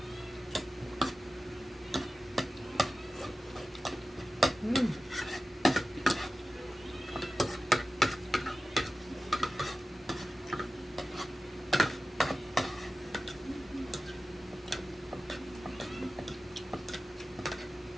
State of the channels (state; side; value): normal; both; correlation 0.94